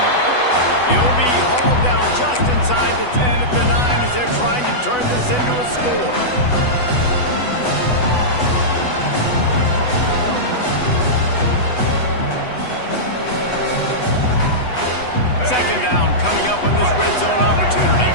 He'll be hauled down just inside the 10 at the 9 as they're trying to turn this into a score. Second down coming up on this red zone opportunity.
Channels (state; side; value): late; right; 8.1 ms